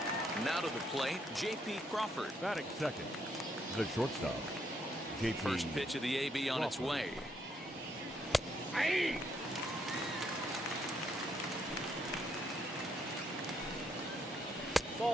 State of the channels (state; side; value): normal; both; correlation 0.74